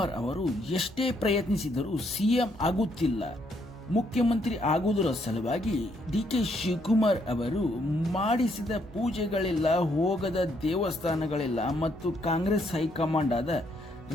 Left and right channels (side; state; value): both; normal; correlation 0.72